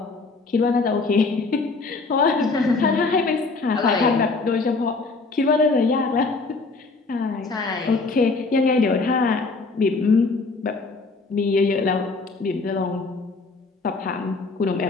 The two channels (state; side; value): quieter; right; 3.9 dB